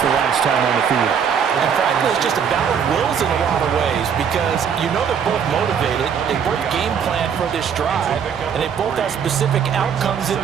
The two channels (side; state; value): left; quieter; 7.4 dB